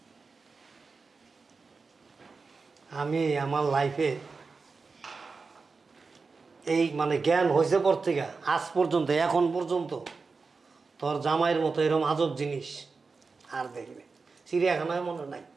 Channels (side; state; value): left; quieter; 4.4 dB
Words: আমি আমার লাইফে এই মানে জ্ঞান হয়েছে পর থেকে আজ পর্যন্ত, এখন পর্যন্ত তোর জামাইয়ের মতো এরকম আজব জিনিস আর দেখবে চিড়িয়াখানায় মনে নাই।